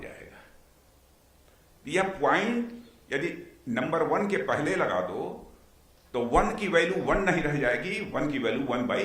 यह पॉइंट यदि नंबर 1 के पहले लगा दो तो 1 की वैल्यू 1 नहीं रह जाएगी, 1 की वैल्यू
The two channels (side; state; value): both; identical; correlation 1.00